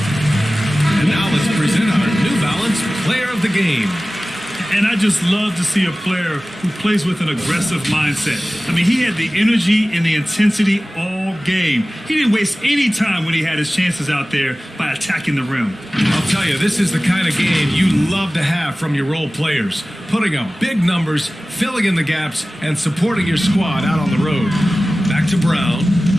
Present our New Balance Player of the Game. And I just love to see a player who plays with an aggressive mindset. I mean, he had the energy and the intensity all game. He didn't waste any time when he had his chances out there by attacking the rim. I'll tell you, this is the kind of game you love to have from your role players. Putting up big numbers, filling in the gaps, and supporting your squad out on the road. Back to Brown.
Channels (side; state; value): both; normal; correlation 0.97